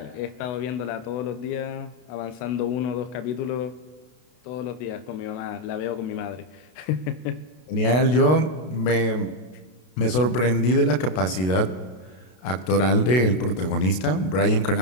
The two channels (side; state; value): right; late; 32 ms